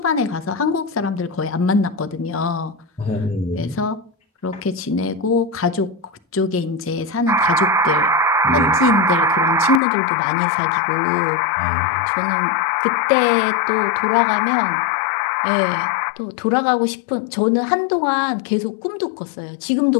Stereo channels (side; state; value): right; drops out; at 9.8 s